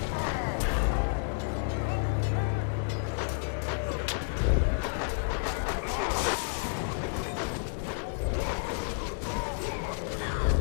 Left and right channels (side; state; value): right; silent; digital silence